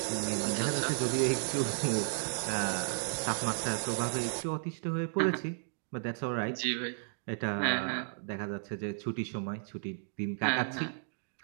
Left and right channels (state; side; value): silent; left; digital silence